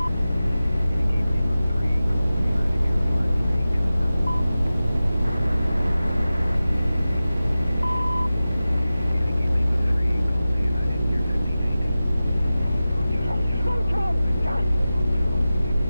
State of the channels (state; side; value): inverted; both; correlation -0.95